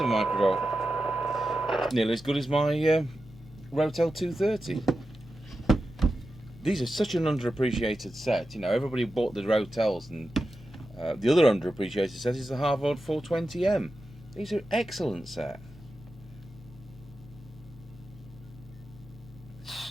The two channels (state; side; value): normal; both; correlation 0.91